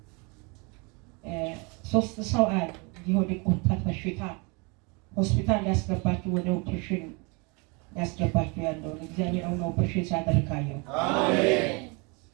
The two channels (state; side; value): quieter; left; 30.2 dB